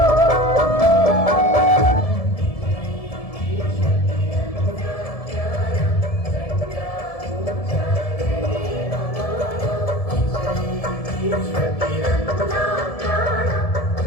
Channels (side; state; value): right; late; 1.7 ms